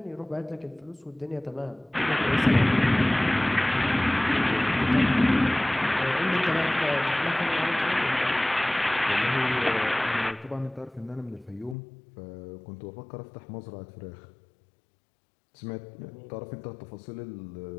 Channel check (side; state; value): right; drops out; at 11.8 s